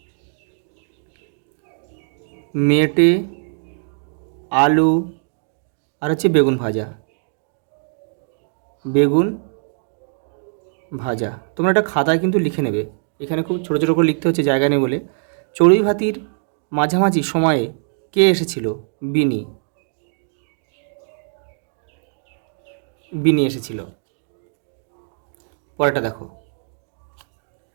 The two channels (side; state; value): left; silent; digital silence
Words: মেটে, আলু, আর হচ্ছে বেগুন ভাজা। বেগুন ভাজা। তোমরা একটা খাতায় কিন্তু লিখে নেবে, এখানে খুব ছোটো ছোটো করে লিখতে হচ্ছে, জায়গা নেই বলে। চড়ুই ভাতির মাঝামাঝি সময়ে কে এসেছিল? বিনি। বিনি এসেছিল। পরেরটা দেখো,